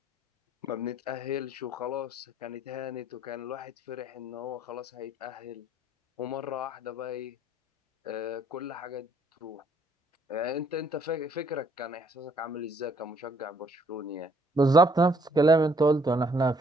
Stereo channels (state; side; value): normal; both; correlation 0.65